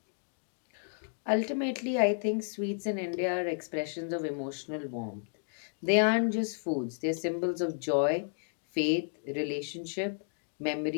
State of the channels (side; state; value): right; silent; digital silence